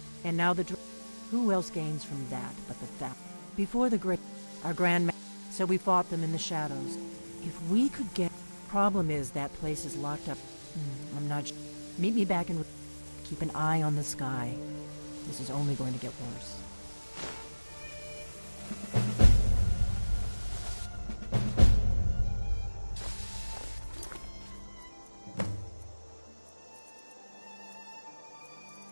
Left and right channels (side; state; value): both; inverted; correlation -1.00